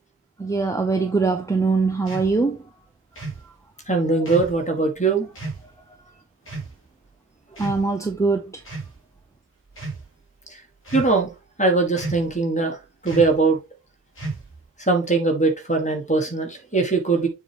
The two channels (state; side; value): quieter; left; 3.3 dB